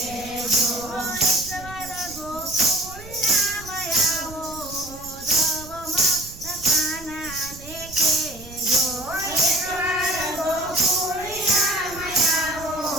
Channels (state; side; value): noise; right; rumble, 16 dB below the sound